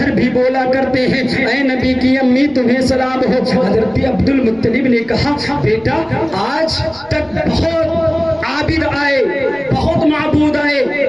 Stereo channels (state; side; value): noise; left; rumble, 28 dB below the sound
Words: بھی بولا کرتے ہیں اے نبی کی امی تمہیں سلام ہو. حضرت عبد المطلب نے کہا بیٹا آج تک بہت عابد آئے, بہت معبود آئے,